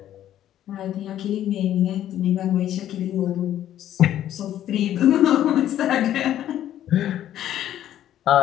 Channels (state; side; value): quieter; right; 11.7 dB